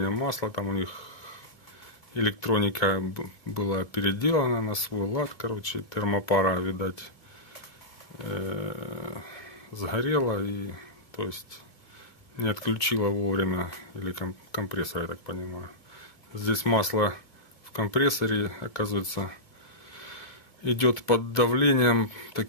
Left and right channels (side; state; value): right; late; 2.4 ms